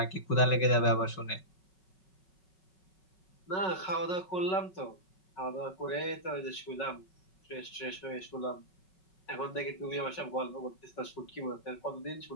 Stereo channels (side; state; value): right; late; 5.4 ms